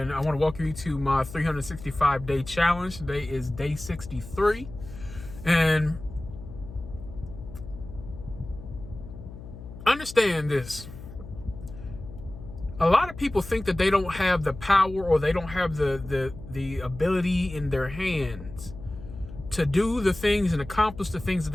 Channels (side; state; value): left; noise; hum, 14 dB below the sound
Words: I want to welcome you to my 365-day challenge. Today is day 63, and understand this. A lot of people think that they don't have the power or they don't have the ability in their hands to do the things and accomplish the things that